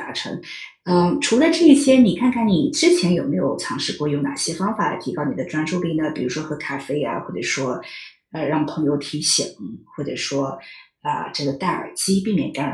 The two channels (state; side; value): identical; both; correlation 1.00